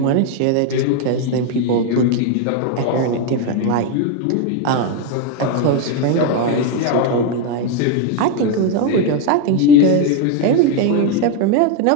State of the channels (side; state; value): both; different; correlation 0.02